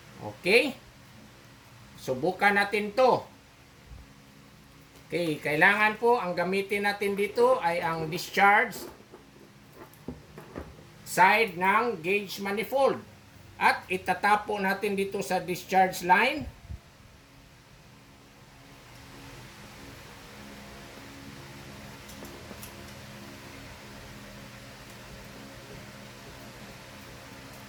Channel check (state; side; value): identical; both; correlation 1.00